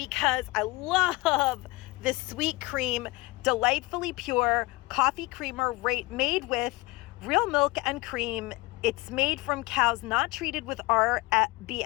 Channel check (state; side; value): quieter; right; 22.2 dB